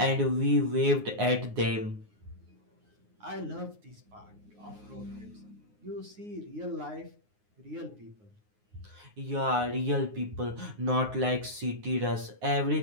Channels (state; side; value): late; left; 9.6 ms